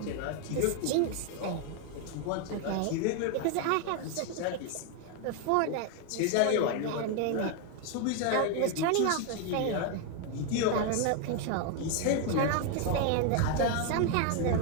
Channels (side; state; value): both; different; correlation 0.01